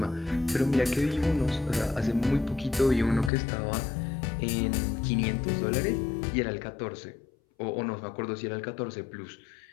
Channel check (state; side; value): drops out; right; at 3.3 s